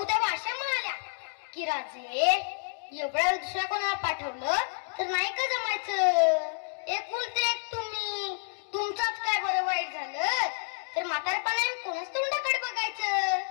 त्या भाषा म्हणाल्या की राजे एवढ्या दुसऱ्या कोणाला पाठवलं तर नाही का जमायचं. एकुलते एक तुम्ही, तुमचाच काय बरं वाईट झालं तर म्हातारपणाने कोणाच तोंडाकडे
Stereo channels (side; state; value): right; silent; digital silence